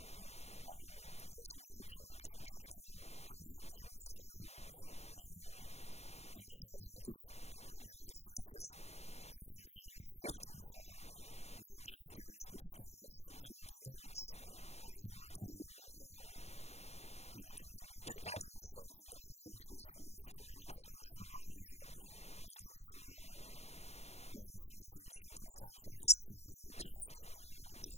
I was not trained through Jeffco, but I had previous training. And so I'm just, it's just overall safety for not just students, but staff in our buildings. We're all working in a community together. So I think our interest here is to really just make sure we're all ready for unforeseen circumstances. So I would just, I wanted to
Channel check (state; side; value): late; right; 0.31 ms